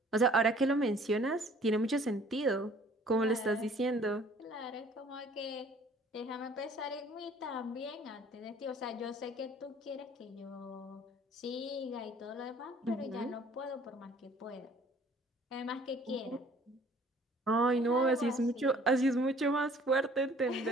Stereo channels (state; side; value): normal; both; correlation 0.54